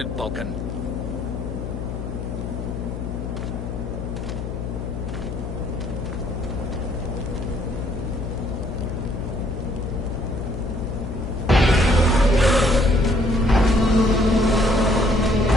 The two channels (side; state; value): left; noise; hum, 6 dB below the sound